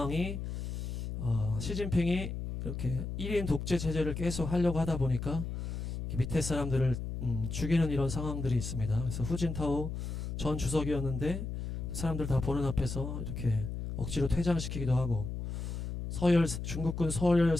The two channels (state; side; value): noise; left; hum, 5 dB below the sound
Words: 시진핑이 이렇게 1인 독재 체제를 계속 하려고 하다 보니까 밑에 사람들을 죽이는 이런 상황들이 있습니다. 그래서 후진타오 전 주석이었는데 사람들 다 보는 앞에서 이렇게 억지로 퇴장시키기도 하고, 중국군 서열